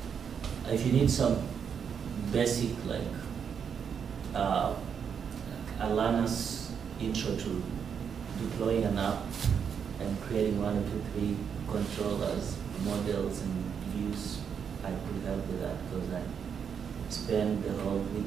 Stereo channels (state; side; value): quieter; left; 7.2 dB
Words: if you need some basic like a learner's intro to deploying an app and creating 1, 2, 3 controllers, models, and views, I could help with that because I spent the whole